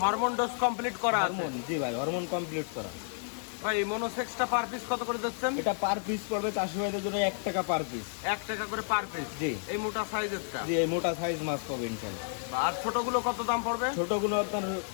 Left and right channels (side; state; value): right; silent; digital silence